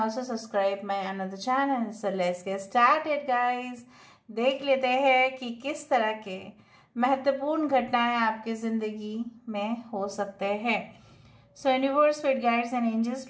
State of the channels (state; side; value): identical; both; correlation 1.00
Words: subscribe my another channel. So let's get started guys. देख लेते हैं कि किस तरह के महत्वपूर्ण घटनाएं आपकी जिंदगी में हो सकते हैं। So universe, spirit guides and angels